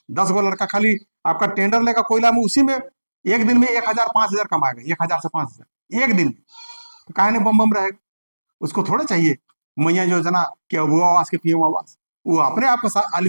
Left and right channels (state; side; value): inverted; both; correlation -1.00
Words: 10 गो लड़का खाली आपका टेंडर लेगा कोयला में, उसी में एक दिन में 1,000 5,000 कमाएगा, 1,000 से 5,000 एक दिन में। तो काहे ने बम रहेगा? उसको थोड़ा चाहिए मैया योजना कि वो आवास के पीएम आवास, वो अपने आप को